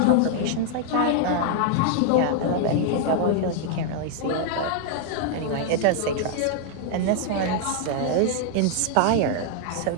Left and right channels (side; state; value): both; different; correlation 0.00